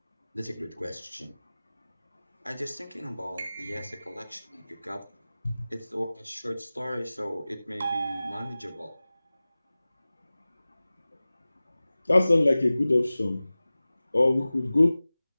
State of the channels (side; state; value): both; inverted; correlation -0.98